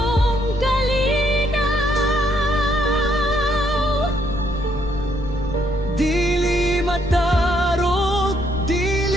kalinaw. Dili matarog,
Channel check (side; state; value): left; noise; rumble, 11 dB below the sound